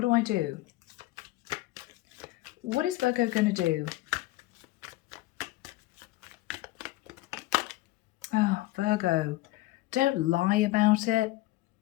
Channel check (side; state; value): right; quieter; 18.3 dB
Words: do I do? What is Virgo going to do? Oh, Virgo, don't lie about it.